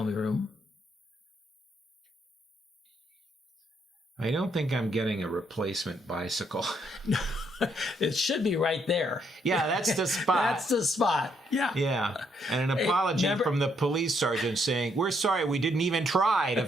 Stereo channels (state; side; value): normal; both; correlation 0.73